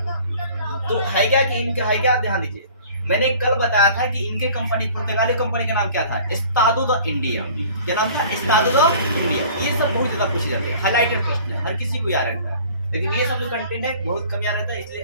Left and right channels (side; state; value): both; inverted; correlation -0.48